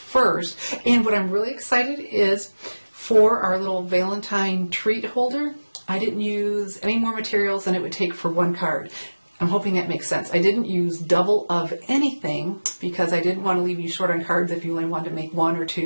And what I'm really excited is for our little Valentine treat holder, I didn't use any more materials than it would take for one card. I'm hoping that makes sense. I didn't use double of anything because I didn't want to leave you short on cards if you only wanted to make one or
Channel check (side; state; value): both; inverted; correlation -1.00